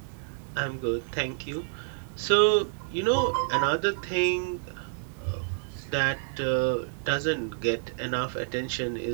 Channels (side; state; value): left; silent; digital silence